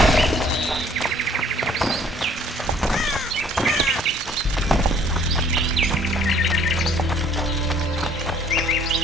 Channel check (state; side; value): normal; both; correlation 0.58